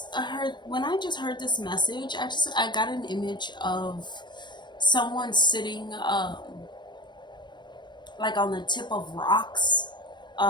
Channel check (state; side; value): late; right; 0.22 ms